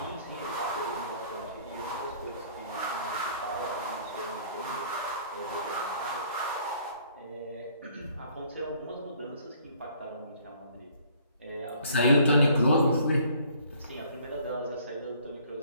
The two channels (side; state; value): both; inverted; correlation -0.59